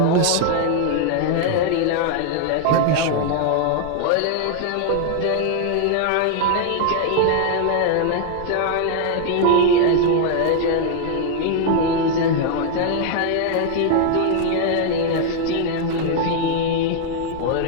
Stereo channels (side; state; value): both; different; correlation 0.00